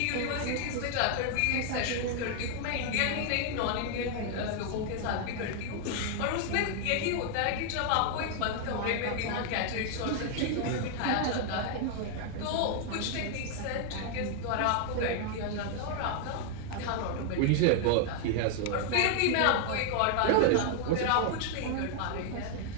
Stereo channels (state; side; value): different; both; correlation 0.00